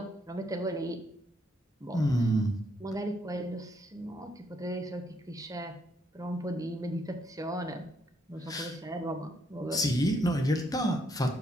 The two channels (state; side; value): normal; both; correlation 0.74